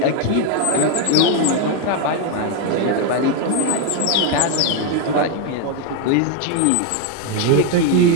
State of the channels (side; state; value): both; different; correlation 0.01